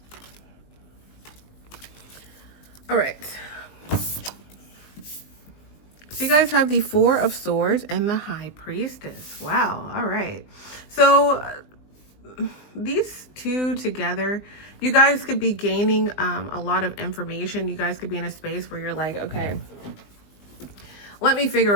All right. So you guys have the Four of Swords and the High Priestess. Wow. All right. So these two together, you guys could be gaining a lot of information. You guys could be in a space where you're like, okay, let me figure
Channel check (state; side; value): late; right; 20 ms